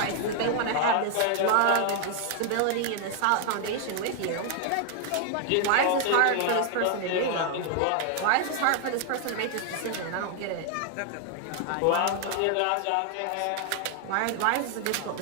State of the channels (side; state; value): both; different; correlation 0.00